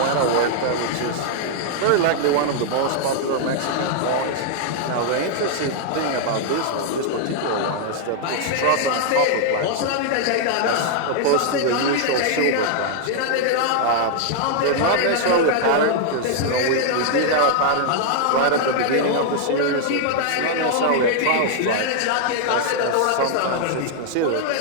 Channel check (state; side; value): different; both; correlation 0.00